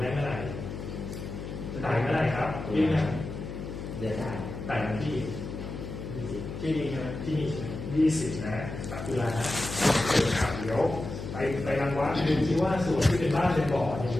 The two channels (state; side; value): noise; left; hum, 8 dB below the sound